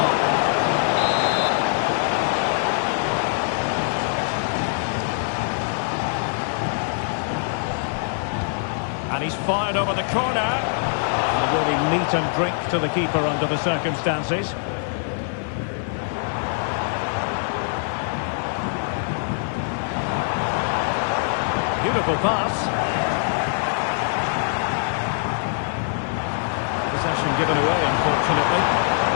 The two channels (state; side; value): silent; right; digital silence